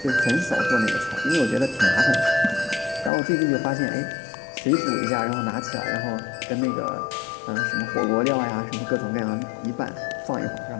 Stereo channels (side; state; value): right; drops out; at 3.1 s